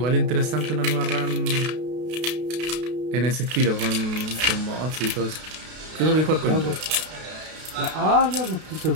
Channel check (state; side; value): late; left; 32 ms